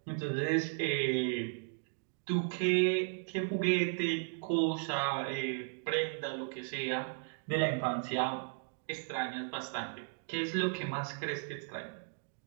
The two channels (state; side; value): silent; left; digital silence